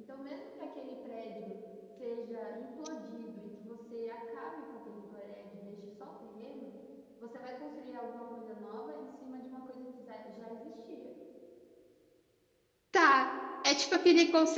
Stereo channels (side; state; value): both; identical; correlation 1.00